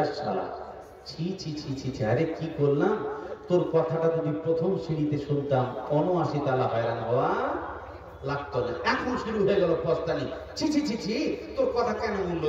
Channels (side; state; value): both; identical; correlation 1.00